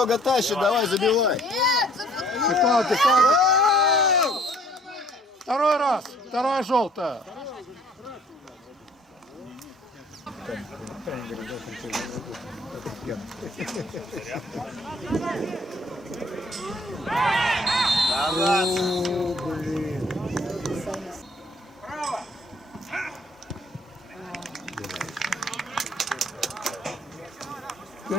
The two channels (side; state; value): both; normal; correlation 0.58